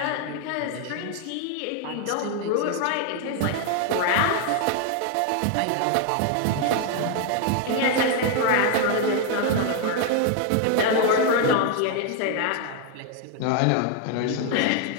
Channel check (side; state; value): both; different; correlation 0.00